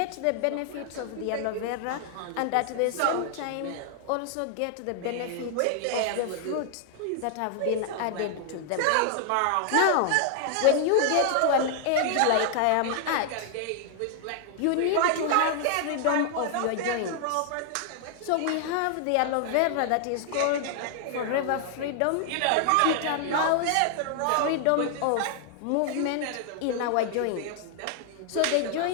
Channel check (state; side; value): different; both; correlation 0.00